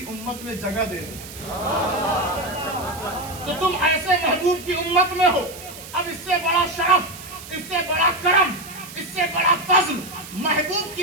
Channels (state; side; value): noise; right; hiss, 14 dB below the sound